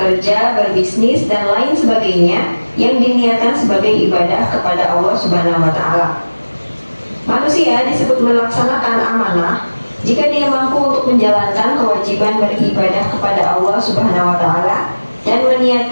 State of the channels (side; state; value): both; inverted; correlation -1.00